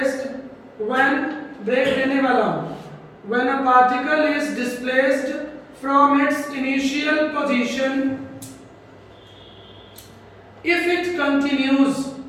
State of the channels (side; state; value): both; identical; correlation 1.00